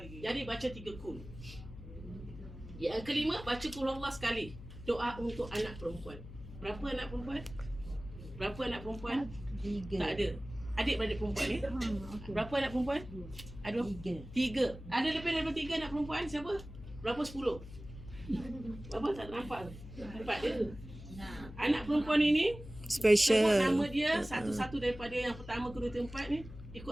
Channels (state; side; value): noise; left; hum, 14 dB below the sound